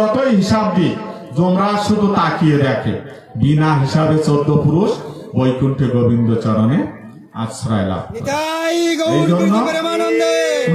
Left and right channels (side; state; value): both; identical; correlation 1.00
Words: হিসাব দিয়ে যমরাজ শুধু তাকিয়ে দেখে, বিনা হিসাবে 14 পুরুষ বৈকুণ্ঠে গোবিন্দ চরণে আশ্রয় লাভ। এই জন্য